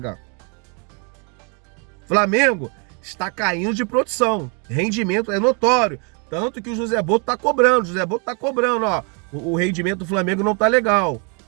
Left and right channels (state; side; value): quieter; left; 36.0 dB